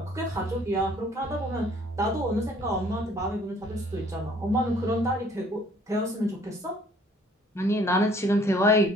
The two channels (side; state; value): both; normal; correlation 0.58